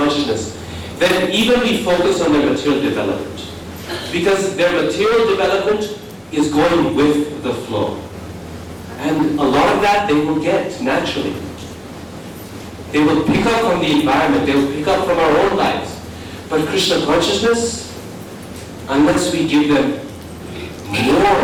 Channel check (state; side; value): identical; both; correlation 1.00